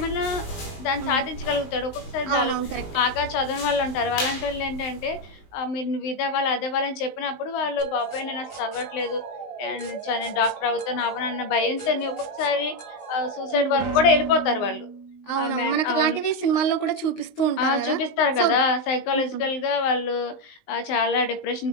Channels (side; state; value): right; late; 19 ms